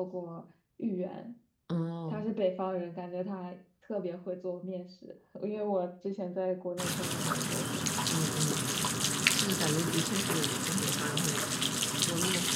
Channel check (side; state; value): both; identical; correlation 1.00